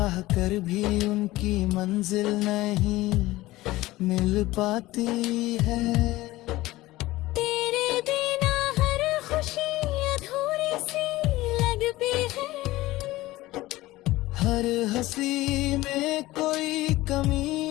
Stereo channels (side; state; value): right; quieter; 18.1 dB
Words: कर भी उनकी मंजिल नहीं मिल पाती है। तेरे बिना हर खुशी अधूरी सी लगती है, हर हंसी में कोई